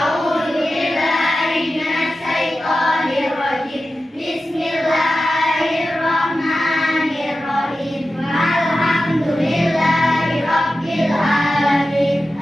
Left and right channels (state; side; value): normal; both; correlation 0.93